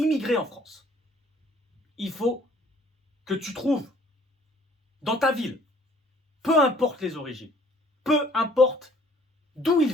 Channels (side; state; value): both; normal; correlation 0.58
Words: en France. Il faut que tu trouves dans ta ville, peu importe les origines, peu importe d'où ils